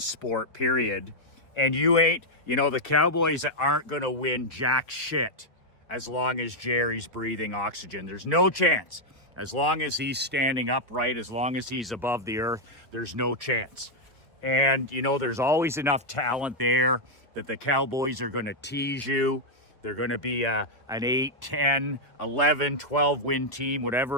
period. And the Cowboys aren't going to win jack shit as long as Jerry's breathing oxygen. There's no chance. As long as he's standing upright, as long as he's above the earth, there's no chance. And, you know, there's always enough talent there that the Cowboys are going to tease you. They're going to be an 8, 10, 11, 12 win team,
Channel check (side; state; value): both; normal; correlation -0.02